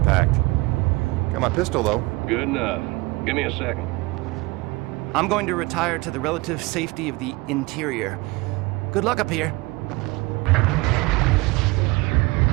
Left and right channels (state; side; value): quieter; left; 23.0 dB